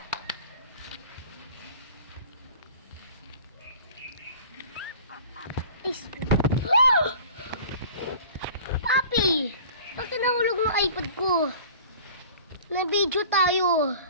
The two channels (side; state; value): both; inverted; correlation -0.44